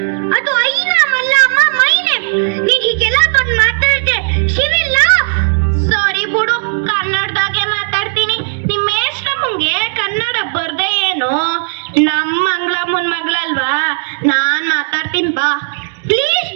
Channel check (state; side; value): silent; left; digital silence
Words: ಅದು ಐ ನಾಮ್ ಅಲ್ಲ ಅಮ್ಮ, ಮೈ ನೇಮ್. ನೀನ್ ಹೀಗೆಲ್ಲ ಬಂದು ಮಾತಾಡ್ದೆ ಶಿವಿಲ್ಲ. ಸಾರಿ ಬಿಡು, ಕನ್ನಡದಾಗೆ ಮಾತಾಡ್ತೀನಿ. ನಿಮ್ಮ ಮೇಷ್ಟ್ರಮ್ಮಂಗೆ ಕನ್ನಡ ಬರ್ದೆ ಏನು? ನಮ್ಮ ಮಂಗಳಮ್ಮನ ಮಗಳಲ್ವಾ, ನಾನ್ ಮಾತಾಡ್ತೀನಿ ಬಾ. Please